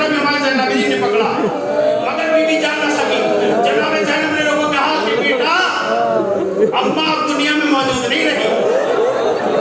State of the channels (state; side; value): identical; both; correlation 1.00